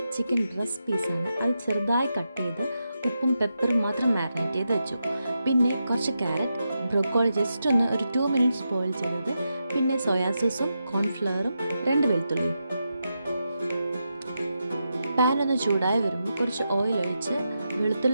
ചിക്കൻ ബ്രസ്റ്റ് പീസാണ്. അത് ചെറുതായി കട്ട് ചെയ്ത് ഉപ്പും പെപ്പറും മാത്രം മാരിനേറ്റ് ചെയ്ത് വെച്ചു. പിന്നെ കുറച്ച് ക്യാരറ്റ്, ബ്രൊക്കോളി ജസ്റ്റ് ഒന്ന് ഒരു 2 മിനിറ്റ്സ് ബോയിൽ ചെയ്തത്, പിന്നെ സോയാ സോസും കോൺഫ്ലവറും 2 വെളുത്തുള്ളിയും. പാൻ ഒന്ന് ചൂടായി വരുമ്പോൾ കുറച്ച് ഓയിൽ ഒഴിച്ച്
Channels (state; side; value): inverted; both; correlation -0.86